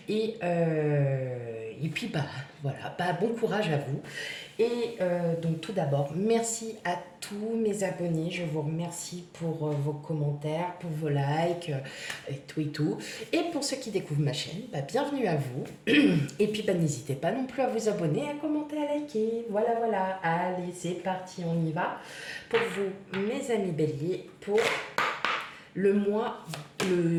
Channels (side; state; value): both; identical; correlation 1.00